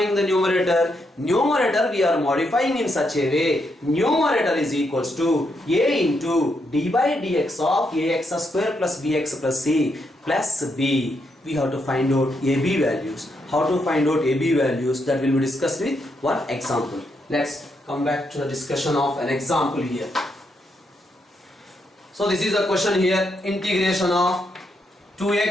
the numerator? Numerator we are modifying in such a way, numerator is equals to a into d by dx of ax square plus bx plus c plus b. We have to find out ab values. How to find out ab values, that will be discussed with one example. Let's come back to the discussion of an example here. So this is the question here, integration of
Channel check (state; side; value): normal; both; correlation 0.79